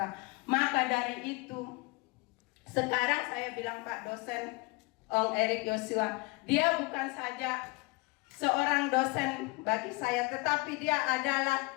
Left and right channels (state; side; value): quieter; right; 24.5 dB